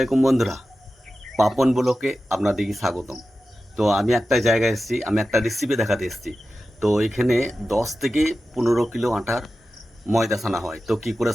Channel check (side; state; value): both; normal; correlation 0.93